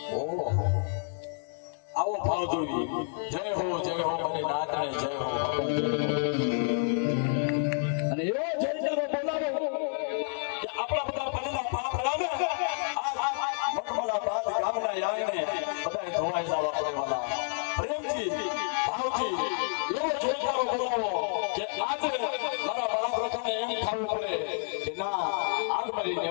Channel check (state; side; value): silent; right; digital silence